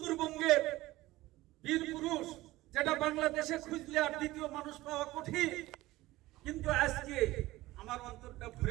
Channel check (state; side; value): quieter; left; 18.0 dB